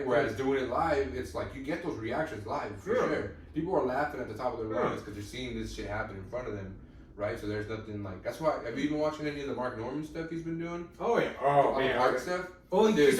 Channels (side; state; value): both; identical; correlation 1.00